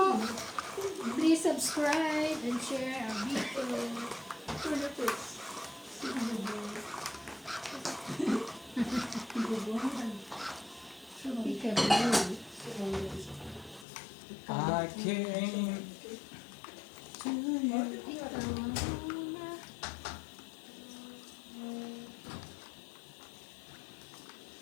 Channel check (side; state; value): right; drops out; at 13.9 s